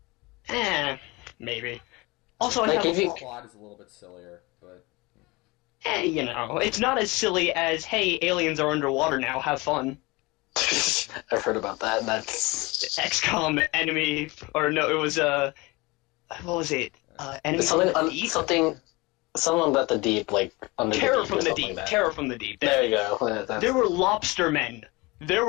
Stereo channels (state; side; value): quieter; right; 23.4 dB